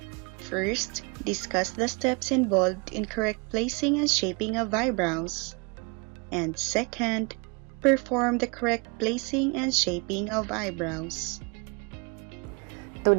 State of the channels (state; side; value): quieter; left; 31.8 dB